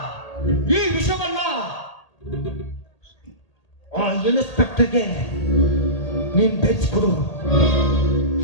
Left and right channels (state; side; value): late; right; 1.8 ms